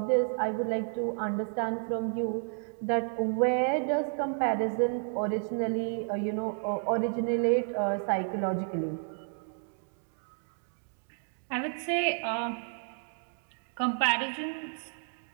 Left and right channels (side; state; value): left; silent; 57 dB below the other